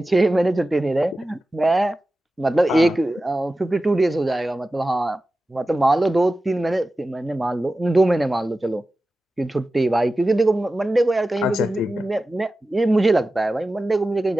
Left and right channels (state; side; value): normal; both; correlation 0.94